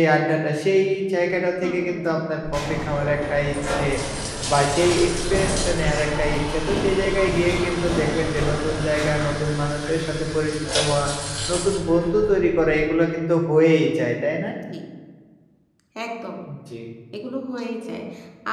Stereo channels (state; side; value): identical; both; correlation 1.00